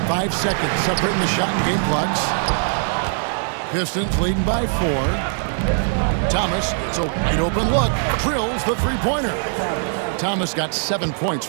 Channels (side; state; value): left; silent; 61 dB below the other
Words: 5 seconds separating the shot and game clocks. Pistons leading by 4. Thomas, it's a wide open look, drills the three-pointer. Thomas got 7 points